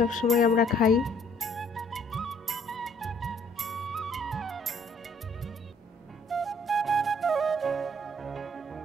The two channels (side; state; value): both; normal; correlation 0.62